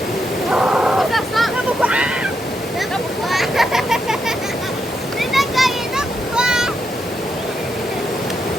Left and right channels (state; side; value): normal; both; correlation 0.82